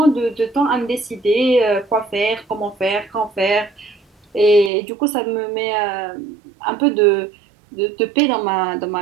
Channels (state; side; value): drops out; left; at 4.7 s